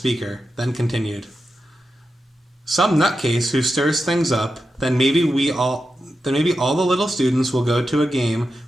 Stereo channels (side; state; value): both; normal; correlation 0.90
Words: then continued. "Some nutcase who stirs things up, then maybe all the little students will go to a game